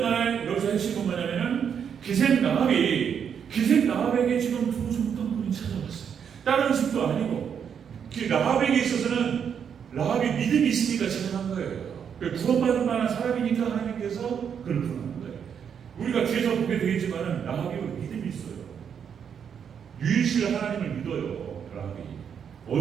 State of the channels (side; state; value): left; quieter; 7.6 dB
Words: 간에 여기서 핵심은 뭐냐면은 기생 라합에게 지금 두 정탐꾼이 찾아왔어요. 다른 집도 아니고 라합에게 있어서는 라합이 믿음이 있으니까 찾아간 거예요. 구원받을 만한 사람이니까 하나님께서 그를 부르는 거예요. 우리가 뒤에서 보게 되겠지만은 라합이 믿음이 있어요. 유일신 하나님을 믿어요. 라합이